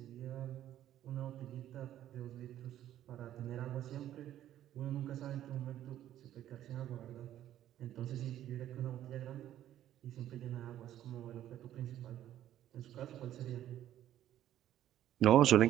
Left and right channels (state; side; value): quieter; left; 12.1 dB